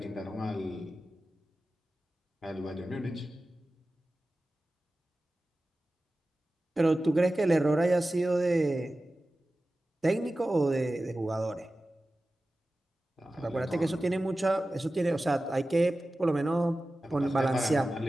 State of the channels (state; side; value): normal; both; correlation 0.95